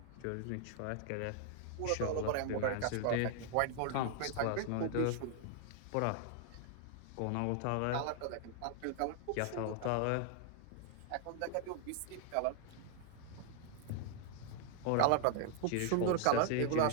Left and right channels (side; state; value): both; different; correlation 0.00